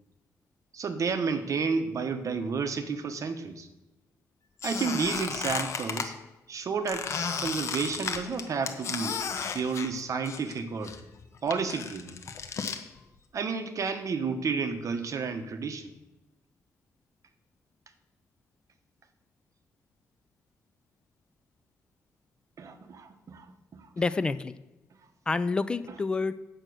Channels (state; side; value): normal; both; correlation 0.54